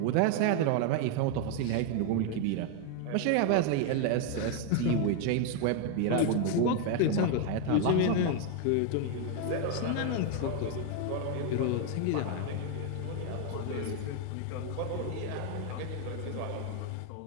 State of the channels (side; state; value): both; different; correlation 0.01